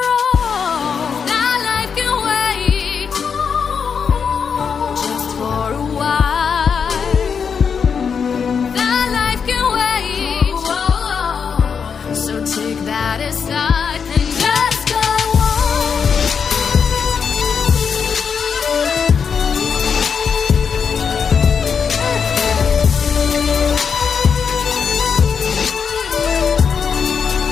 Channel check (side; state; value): right; quieter; 6.4 dB